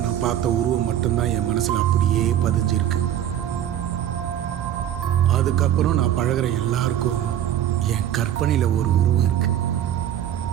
நான் பார்த்த உருவம் மட்டும்தான் என் மனசுல அப்படியே பதிஞ்சிருக்கு. அதுக்கப்புறம் நான் பழகுற எல்லாருக்கும் என் கற்பனையில ஒரு உருவம் இருக்கு.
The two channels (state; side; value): quieter; left; 10.9 dB